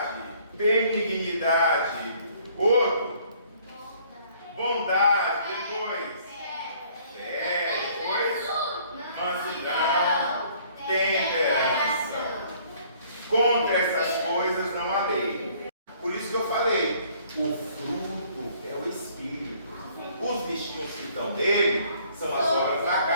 benignidade. Outro, bondade. Depois, depois, mansidão, temperança. Contra essas coisas não há lei. Por isso que eu falei, o fruto é o Espírito. Os bichinhos que estão nele são as obras da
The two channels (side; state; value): both; inverted; correlation -0.59